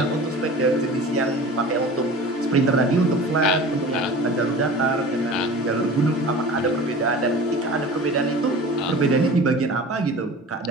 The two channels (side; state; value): both; normal; correlation 0.39